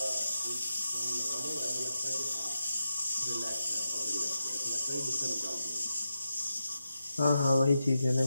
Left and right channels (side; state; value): both; inverted; correlation -0.89